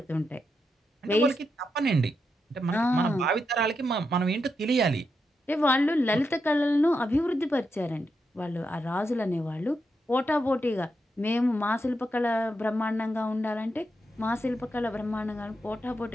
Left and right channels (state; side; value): normal; both; correlation 0.84